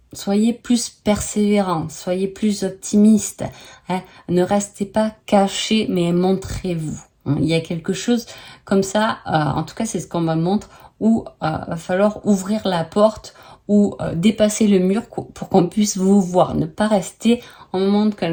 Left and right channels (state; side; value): identical; both; correlation 1.00